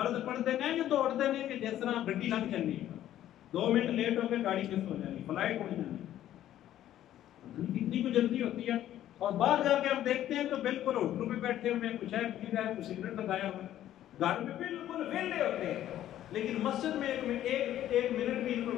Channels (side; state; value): right; quieter; 12.3 dB